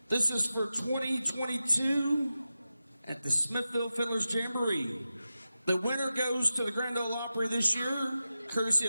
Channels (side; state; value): both; inverted; correlation -0.93